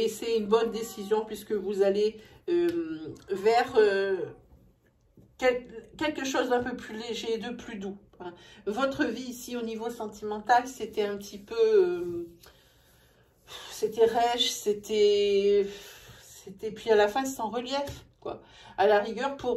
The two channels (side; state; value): both; identical; correlation 1.00